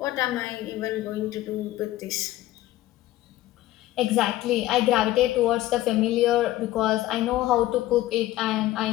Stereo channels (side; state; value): right; quieter; 15.7 dB